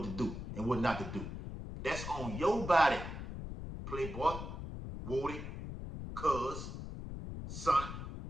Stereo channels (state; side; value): noise; left; rumble, 7 dB below the sound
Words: to do and what not to do. That's on your body, playboy, Woody, cuz, son,